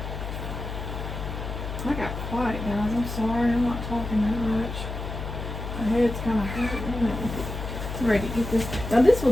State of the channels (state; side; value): noise; left; hum, 6 dB below the sound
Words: I got quiet, guys. I'm sorry. I'm not talking that much. My head's kind of hurting. I'm ready to get this. Now, this